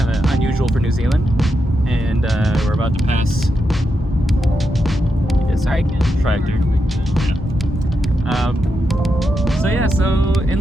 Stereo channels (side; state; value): both; normal; correlation 0.86